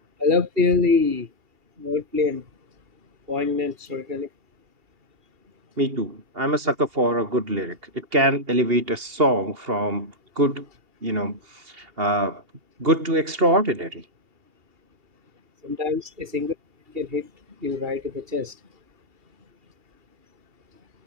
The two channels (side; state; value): left; late; 2.8 ms